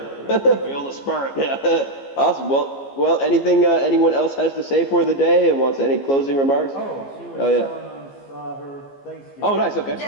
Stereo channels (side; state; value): right; late; 15 ms